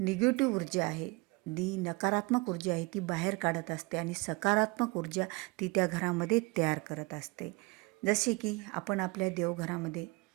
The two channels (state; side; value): quieter; left; 25.7 dB